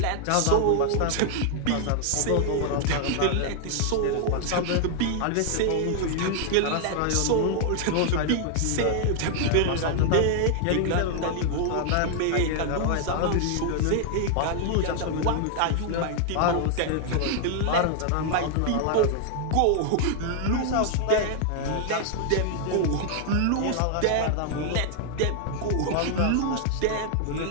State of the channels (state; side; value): different; both; correlation 0.00